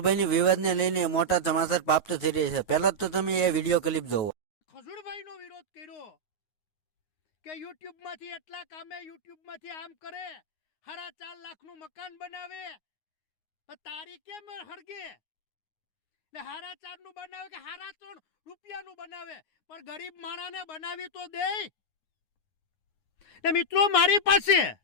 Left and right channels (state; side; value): late; right; 9.6 ms